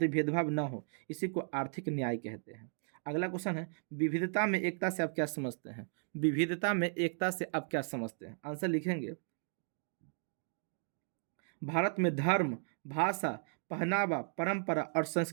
भेदभाव न हो, इसी को आर्थिक न्याय कहते हैं। अगला क्वेश्चन है, विविधता में एकता से आप क्या समझते हैं? विविधता में एकता से आप क्या समझते हैं? आंसर लिखेंगे, भारत में धर्म, भाषा, पहनावा, परंपरा और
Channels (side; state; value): left; silent; 54 dB below the other